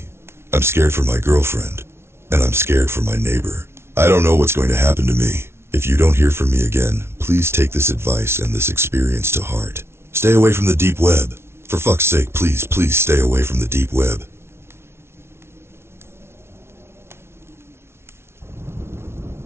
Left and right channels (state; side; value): late; left; 0.12 ms